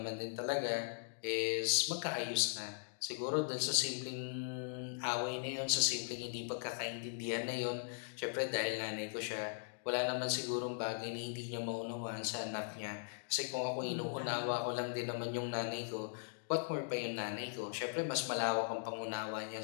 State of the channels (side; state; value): right; silent; digital silence